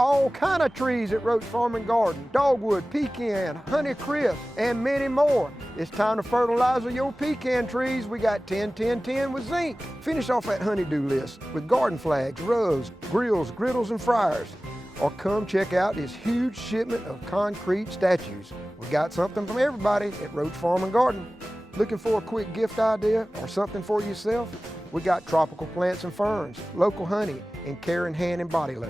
kind of trees at Roach Farm and Garden. Dogwood, pecan, honeycrisp, and many more. It's time to fertilize your pecan trees. We got 10-10-10 with zinc. Finish off that honeydew list with garden flags, rugs, grills, griddles, and fryers. Or come check out this huge shipment of concrete statues. We got something from everybody at Roach Farm and Garden. Looking for a quick gift idea or something for yourself? We got tropical plants and ferns, local honey, and care in hand and body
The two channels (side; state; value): both; normal; correlation 0.97